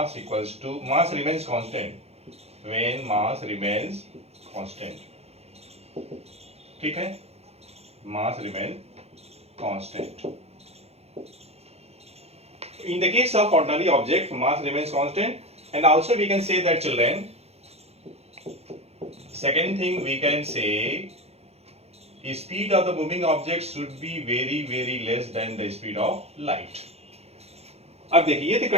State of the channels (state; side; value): late; left; 0.30 ms